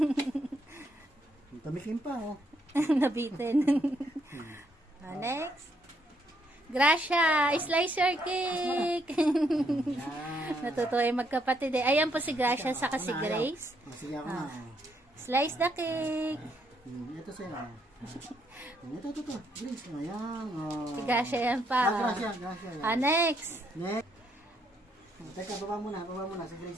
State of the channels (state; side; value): normal; both; correlation 0.73